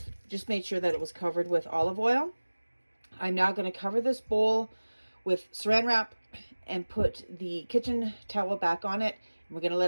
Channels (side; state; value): both; inverted; correlation -1.00